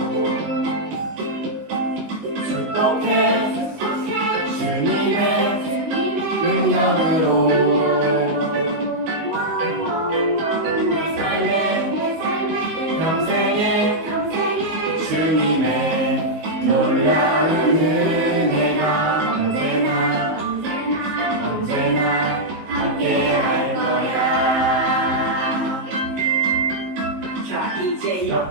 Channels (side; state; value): left; late; 19 ms